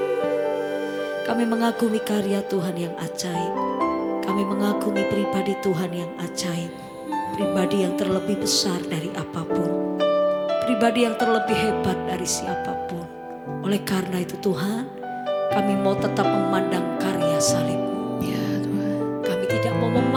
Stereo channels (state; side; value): identical; both; correlation 1.00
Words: Kami mengagumi karya Tuhan yang ajaib. Kami mengagumi pribadi Tuhan yang ajaib. Pribadi yang terlebih besar dari apapun, pribadi yang terlebih hebat dari siapapun. Oleh karena itu Tuhan, kami mau tetap memandang karya salib-Mu. Ya Tuhan. Kami tidak mau